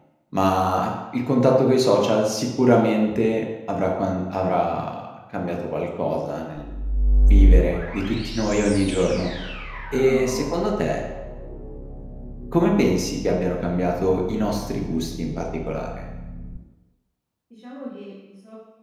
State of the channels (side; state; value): both; identical; correlation 1.00